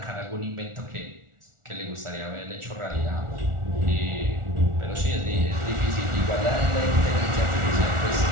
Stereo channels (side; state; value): left; late; 1.4 ms